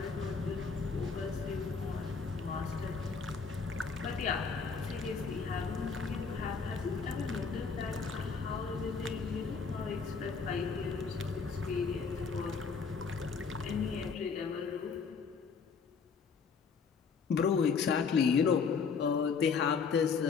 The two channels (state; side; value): quieter; right; 5.4 dB